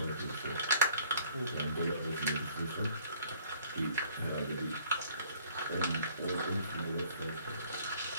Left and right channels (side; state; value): both; inverted; correlation -0.58